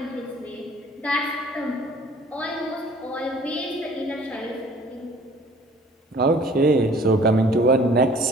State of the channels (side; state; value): both; normal; correlation 0.52